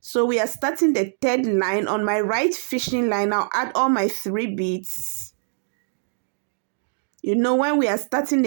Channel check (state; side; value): silent; left; digital silence